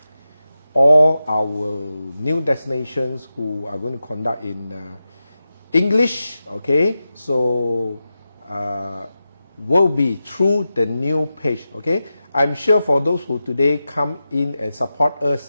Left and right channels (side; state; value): both; inverted; correlation -0.91